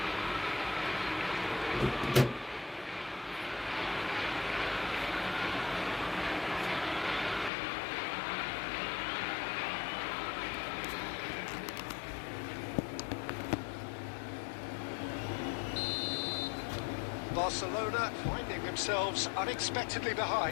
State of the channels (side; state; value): right; drops out; at 7.5 s